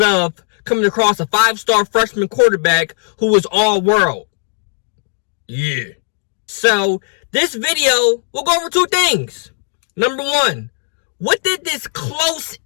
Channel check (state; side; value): silent; right; digital silence